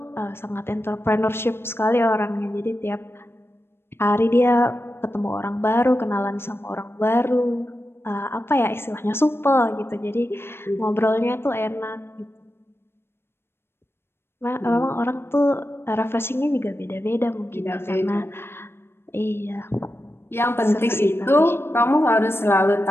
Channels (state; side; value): late; right; 0.12 ms